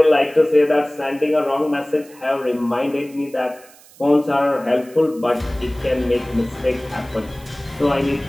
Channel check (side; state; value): right; noise; hiss, 24 dB below the sound